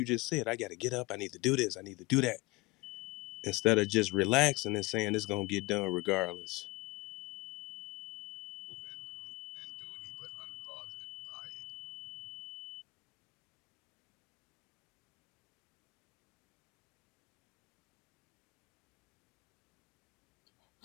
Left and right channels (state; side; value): quieter; right; 22.9 dB